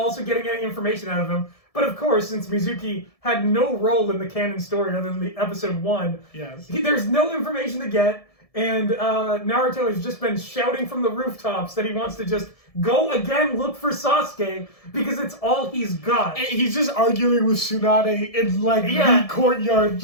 also getting any information out of him. But of course, since Mizuki had no role in the canon story other than the episode 1, yes, there's no information to get, and Naruto has just been shouting from the rooftops that he wants to just go again look for Sasuke because it's all he's got. And he's just arguing with Tsunade in like the courtyard,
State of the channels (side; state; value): right; late; 1.7 ms